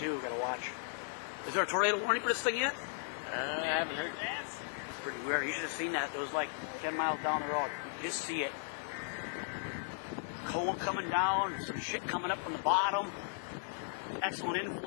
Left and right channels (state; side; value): silent; right; digital silence